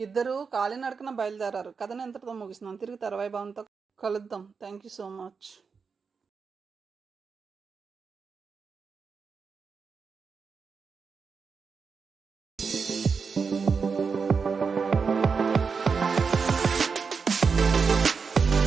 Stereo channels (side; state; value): left; quieter; 5.4 dB